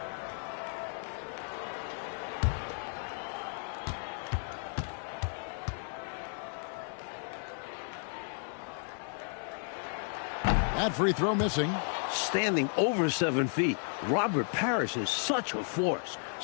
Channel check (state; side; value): silent; right; 55 dB below the other